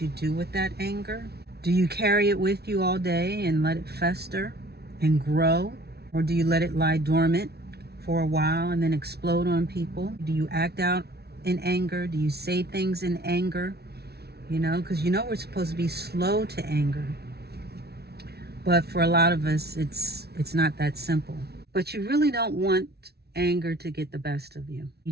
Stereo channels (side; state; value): left; late; 0.47 ms